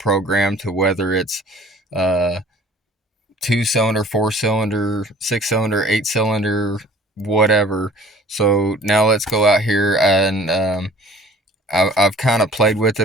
to whether it's 2-cylinder, 4-cylinder, 6-cylinder, 8-cylinder, whatever. So now let's go out here, and I've kind of played with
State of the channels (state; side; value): normal; both; correlation 0.50